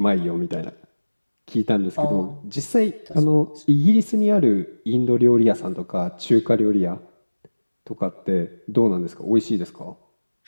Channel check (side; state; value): both; inverted; correlation -1.00